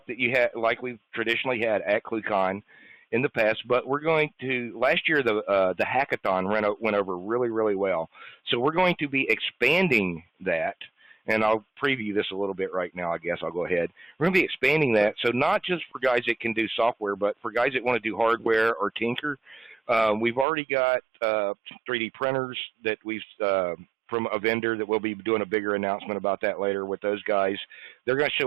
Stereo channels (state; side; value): drops out; left; at 20.5 s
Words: that you had, like we've traditionally had at ClueCon in the past, but we're going to, last year the hackathon went over really, really well. So we're going to be expanding that, and I'll preview this a little bit right now, I guess. I'll go ahead. We're going to be expanding that, so not just for guys that can do software, but for guys that want to do hardware or tinker. We've already got 3D printers that we've from a vendor that we'll be doing a bigger announcement about that later with those guys. They're going to